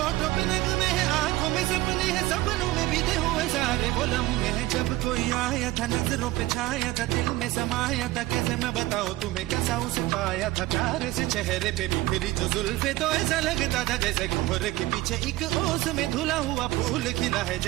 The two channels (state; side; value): quieter; left; 17.8 dB